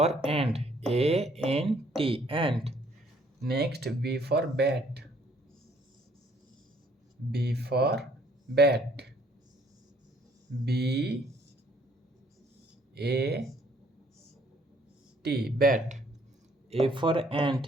ant. A-N-T. Ant. Next B for bat. B for bat. B A T. Bat. A for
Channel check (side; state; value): both; normal; correlation 0.63